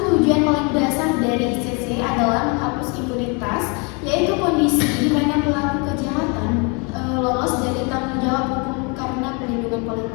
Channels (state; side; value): quieter; right; 32.5 dB